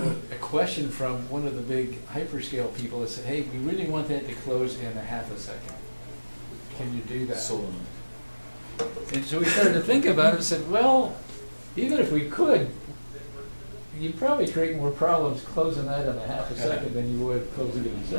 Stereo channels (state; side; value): inverted; both; correlation -1.00